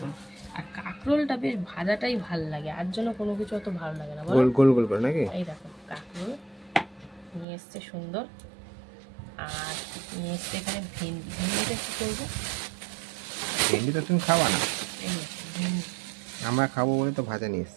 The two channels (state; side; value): drops out; left; at 7.5 s